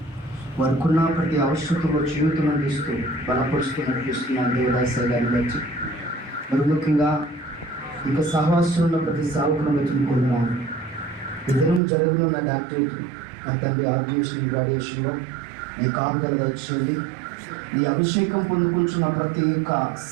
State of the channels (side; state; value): left; drops out; at 11.8 s